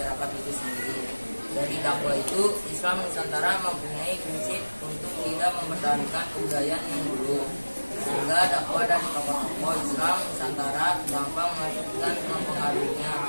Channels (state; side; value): inverted; both; correlation -1.00